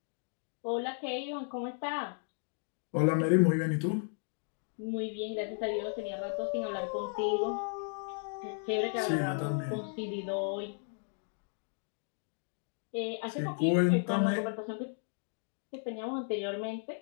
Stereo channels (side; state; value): right; silent; 55 dB below the other